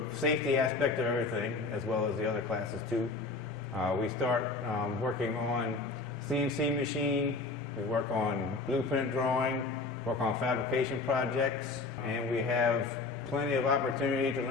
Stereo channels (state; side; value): quieter; right; 3.8 dB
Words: safety aspect of everything, as well as the other classes too. We start working on CNC machine, we work on blueprint drawing, work on fabrication projects, and we have plenty of opportunity to